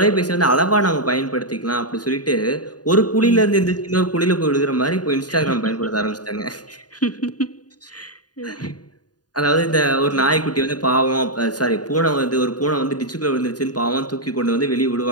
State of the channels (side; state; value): right; late; 0.69 ms